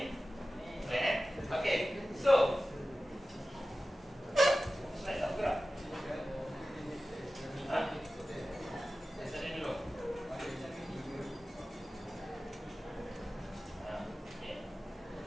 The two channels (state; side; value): normal; both; correlation 0.95